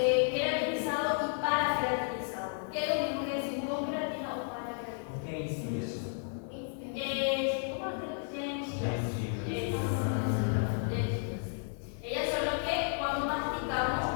queratinizado y paraceratinizado. ¿Qué es lo mismo que decir con queratina o paraceratina? ¿Cómo lo tienes? Ellas son las que cuando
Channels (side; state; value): right; silent; 56 dB below the other